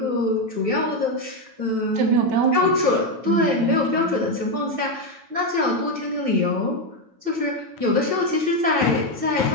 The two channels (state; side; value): late; left; 9.1 ms